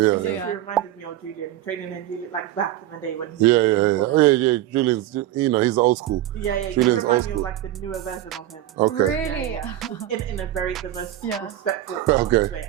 So Yeah. It reminded me of Julian, training and Julian, back in the day when he Yeah. Julian's, you know, he's old school. Yeah, you Julian's remind me old of the newer version of him. Okay. Really? Yeah. In the most Yeah. respectful Okay. way.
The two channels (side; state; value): left; quieter; 13.4 dB